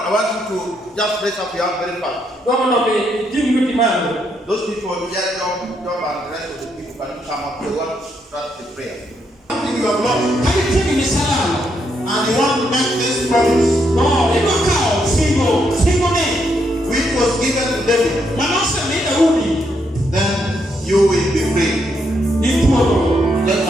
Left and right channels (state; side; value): normal; both; correlation 0.77